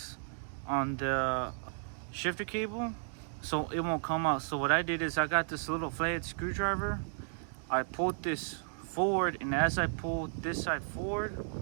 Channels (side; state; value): left; silent; digital silence